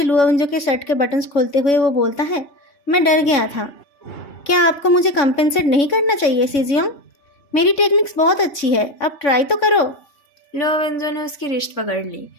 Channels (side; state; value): right; late; 3.5 ms